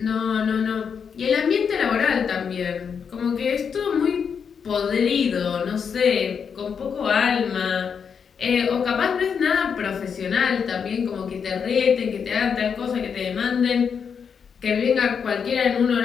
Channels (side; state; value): right; quieter; 6.7 dB